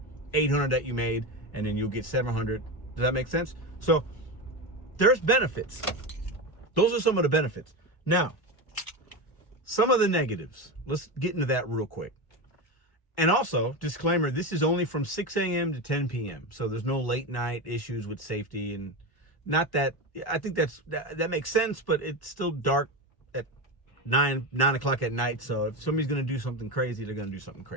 800 that you made, and then you'll get 700. Does that make sense? So there's benefits. Those are some of the benefits. Now, some of the negatives. Let's get into that real quick. And also, disclaimer, this is only from 6 a.m. to 10 p.m. So there's no late night issues with safety, and not that, I think that makes sense, but it's still dark at 9 o'clock at night. So if somebody's going to do something crazy, they're going to do something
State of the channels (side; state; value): right; late; 1.1 ms